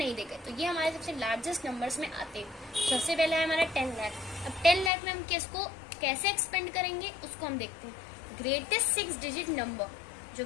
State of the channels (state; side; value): drops out; right; at 4.9 s